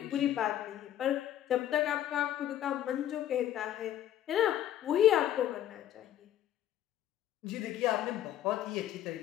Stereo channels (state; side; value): quieter; right; 11.8 dB